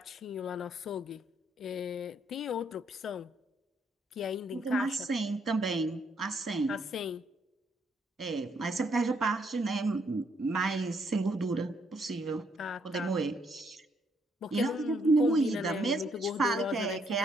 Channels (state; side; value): normal; both; correlation 0.71